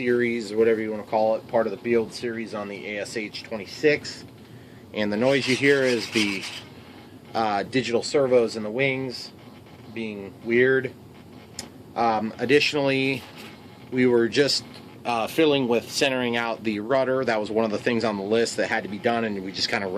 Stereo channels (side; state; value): both; identical; correlation 1.00